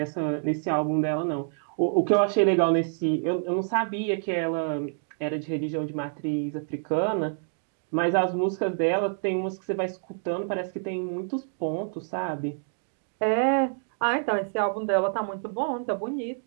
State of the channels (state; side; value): silent; left; digital silence